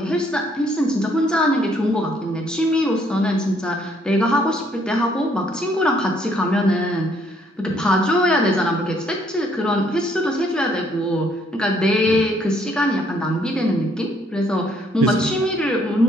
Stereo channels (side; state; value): both; normal; correlation 0.67